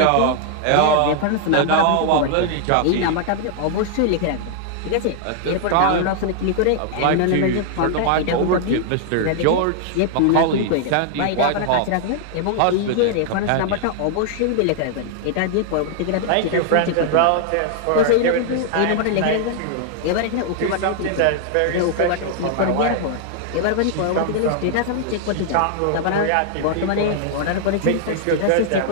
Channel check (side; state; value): both; different; correlation 0.00